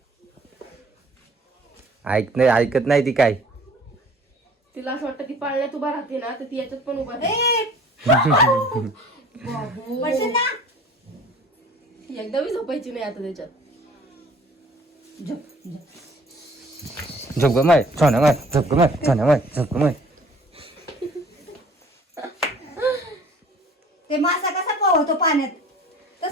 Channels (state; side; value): normal; both; correlation 0.51